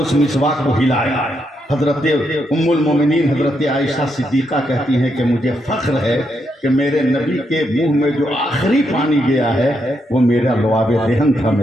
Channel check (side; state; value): both; normal; correlation 0.79